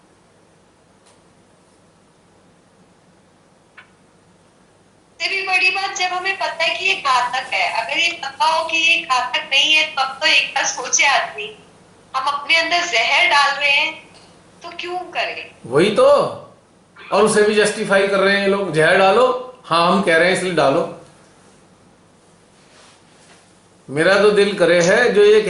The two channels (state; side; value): identical; both; correlation 1.00